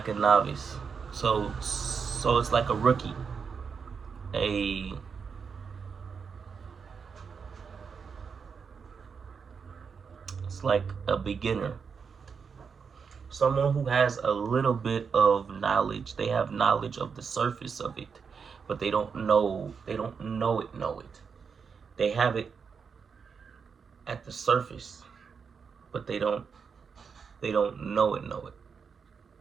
a novice. So it's like a rookie, a it's like a beginner, someone who has a little bit of knowledge. They have knowledge of the surface of it, but they don't know. They don't know it. Know it. They have it at the surface, but they don't. They don't know it. Know it.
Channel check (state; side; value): quieter; left; 6.0 dB